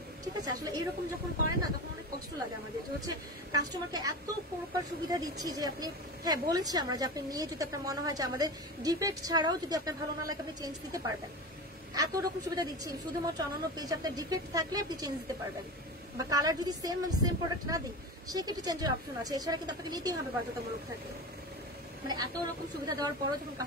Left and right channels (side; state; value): both; normal; correlation 0.27